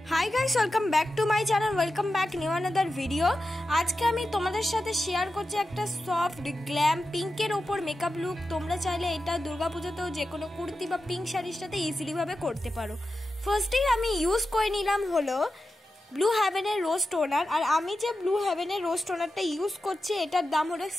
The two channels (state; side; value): normal; both; correlation 0.91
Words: Hi guys, welcome back to my channel, welcome back new another video. আজকে আমি তোমাদের সাথে শেয়ার করছি একটা সফট গ্ল্যাম পিঙ্কের ওপর মেকআপ লুক। তোমরা চাইলে এটা দুর্গাপূজাতেও যে কোনো কুর্তি বা পিঙ্ক শাড়ির সাথে ইজিলি ভাবে করতে পারো। ফার্স্টেই আমি ইউজ করে নিলাম হলো ব্লু হেভেনের রোজ টোনার। আর আমি যে ব্লু হেভেনের রোজ টোনারটা ইউজ করছি এটার দাম হলো